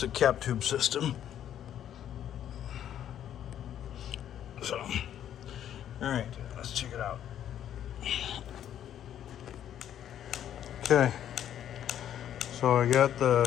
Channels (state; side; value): quieter; right; 10.4 dB